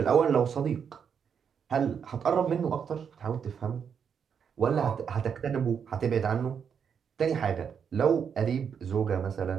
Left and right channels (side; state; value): left; quieter; 7.2 dB